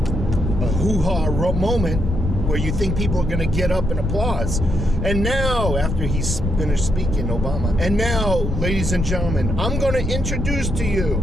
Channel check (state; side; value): noise; left; rumble, 2 dB below the sound